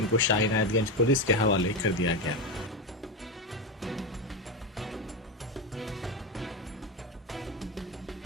शाह इनायतगंज पुलिस के हवाले कर दिया गया।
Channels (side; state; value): both; normal; correlation 0.14